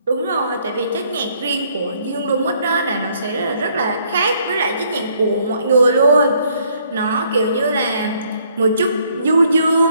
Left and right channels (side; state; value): both; inverted; correlation -0.67